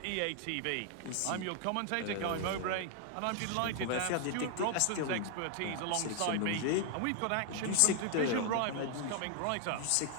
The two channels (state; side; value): different; both; correlation 0.00